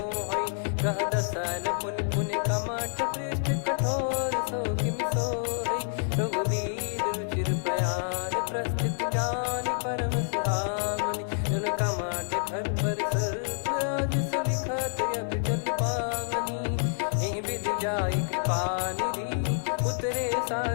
गह दसल पुन पुन कमठ पृष्ठ कठोर सो किमि सोहै। रघुवीर रुचिर प्रयाण प्रस्थित जानि परम सुहावनि। जन कमठ खर पर सर्प राज सलिखत यग जल पावनी। एहि विधि जाई कृपा निधि उतरे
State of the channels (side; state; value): right; silent; digital silence